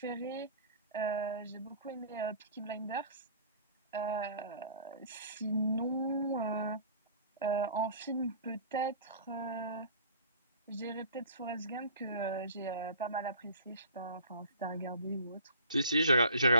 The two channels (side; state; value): both; inverted; correlation -0.47